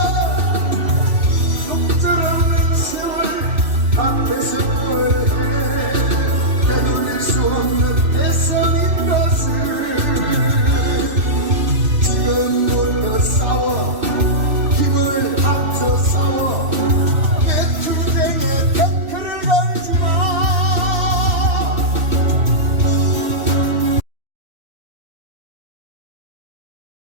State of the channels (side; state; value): left; late; 3.0 ms